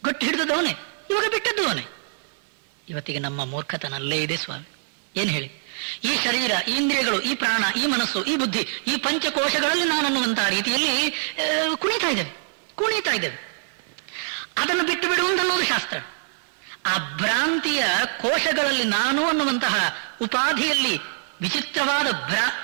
ಗೊಟ್ಟು ಹಿಡಿದವನೇ, ಇವಾಗ ಬಿಟ್ಟದ್ದು ಅವನೇ. ಇವತ್ತಿಗೆ ನಮ್ಮ ಮೂರ್ಖತನಲ್ಲೇ ಇದೆ ಸ್ವಾಮಿ. ಏನ್ ಹೇಳಿ? ಈ ಶರೀರ, ಈ ಇಂದ್ರಿಯಗಳು, ಈ ಪ್ರಾಣ, ಈ ಮನಸ್ಸು, ಈ ಬುದ್ಧಿ, ಈ ಪಂಚಕೋಶಗಳಲ್ಲಿ ನಾನನ್ನುವಂತಹ ರೀತಿಯಲ್ಲಿ ಕುಣಿತಾ ಇದ್ದೇವೆ. ಅದನ್ನು ಬಿಟ್ಟು ಬಿಡುವುದು ಅನ್ನೋದು ಶಾಸ್ತ್ರ. ಆ ಭ್ರಾಂತಿಯ ಕೋಶಗಳಲ್ಲಿ ನಾನು ಅನ್ನುವಂತಹ ಉಪಾಧಿಯಲ್ಲಿ ವಿಚಿತ್ರವಾದ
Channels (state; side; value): silent; left; 62 dB below the other